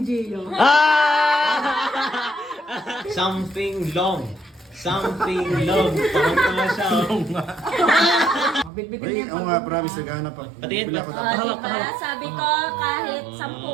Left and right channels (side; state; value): left; drops out; at 8.7 s